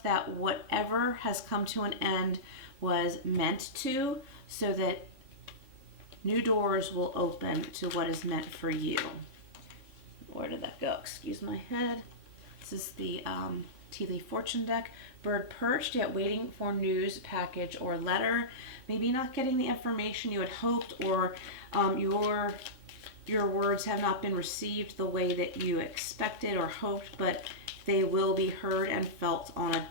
that whatever has come to an end was meant to, so that new doors will open to what is meant for you. Where did that go? Excuse my head. This is the Tea Leaf Fortune deck. Bird perched, yet waiting for news, package, or letter. Maybe not getting the information you had hoped, or your words have not been received the way that you expected or hoped, but they will be heard and felt on a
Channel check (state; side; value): late; left; 3.7 ms